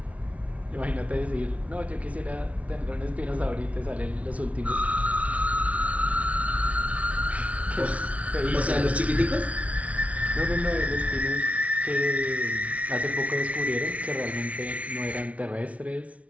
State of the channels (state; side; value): late; left; 0.066 ms